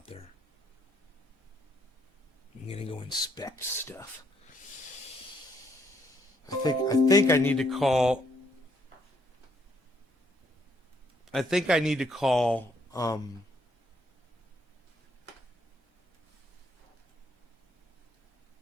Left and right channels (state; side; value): normal; both; correlation 0.71